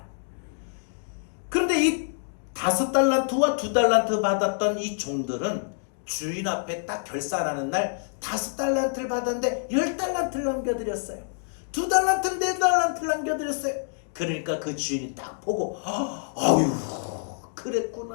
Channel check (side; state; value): right; silent; digital silence